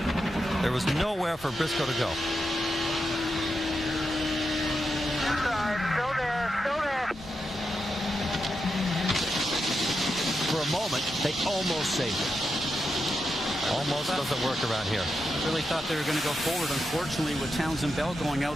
There was nowhere for Briscoe to go. For a moment, they almost saved it. Almost doesn't work around here. I really thought they were going to go forward. Unfortunately, with Townsend Bell going out,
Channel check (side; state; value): both; normal; correlation 0.86